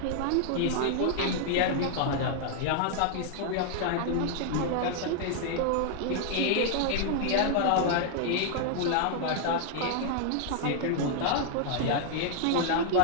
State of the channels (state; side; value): different; both; correlation 0.00